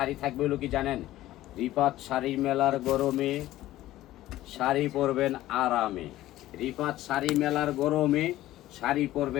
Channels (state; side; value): quieter; right; 15.2 dB